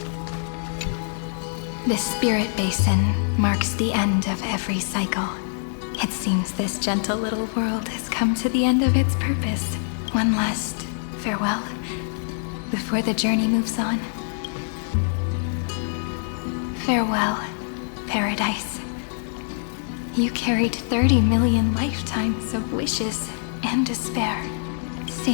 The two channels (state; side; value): silent; right; 62 dB below the other